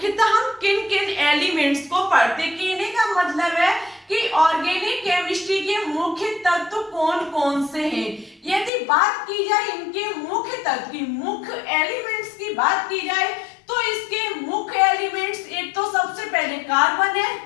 हम किन किन एलिमेंट्स को पढ़ते हैं। कहने का मतलब है कि ऑर्गेनिक केमिस्ट्री के मुख्य तत्व कौन कौन से हैं। यदि बात की जाए इनके मुख्य तत्व की, मुख्य एलिमेंट्स की बात की जाए तो इसके मुख्य एलिमेंट्स एक तो सबसे पहले कार्बन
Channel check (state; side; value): drops out; right; at 8.7 s